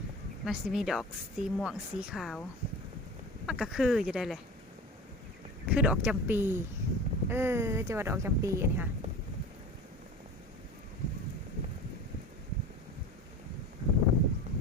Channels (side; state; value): both; normal; correlation 0.35